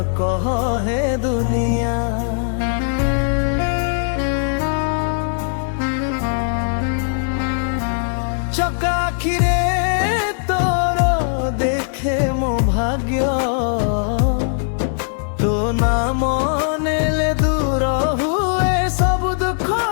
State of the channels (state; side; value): silent; right; 63 dB below the other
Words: କହ ହେ ଦୁନିଆ। ଚକା ଆଖିରେ ତୋର ଦେଖେ ମୋ ଭାଗ୍ୟ ତୋ ନାମ ନେଲେ ଦୂର ହୁଏ ସବୁ ଦୁଃଖ